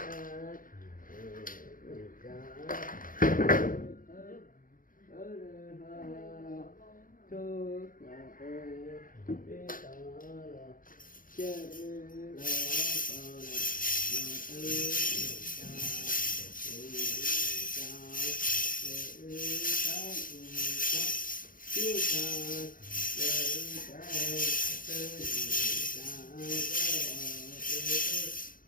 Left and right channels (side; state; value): right; late; 0.40 ms